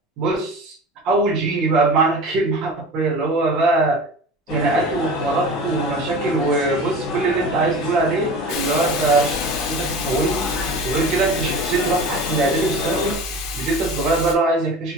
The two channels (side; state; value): both; normal; correlation 0.35